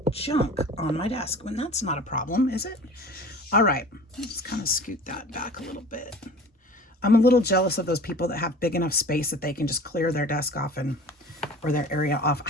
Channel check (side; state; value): both; normal; correlation 0.42